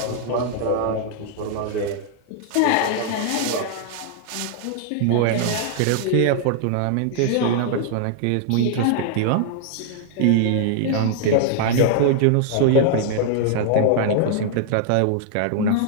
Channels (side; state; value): both; different; correlation 0.00